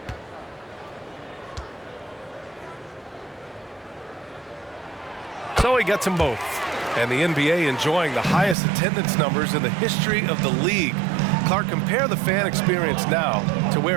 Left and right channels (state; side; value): drops out; left; at 8.6 s